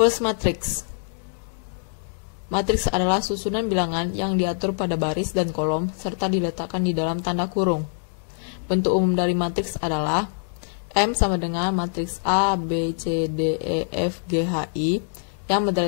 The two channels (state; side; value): silent; right; digital silence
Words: matrix. Matriks adalah susunan bilangan yang diatur pada baris dan kolom serta diletakkan di dalam tanda kurung. Bentuk umum dari matriks adalah M sama dengan matriks A, B, C, D, E, F, G, H, I. Yang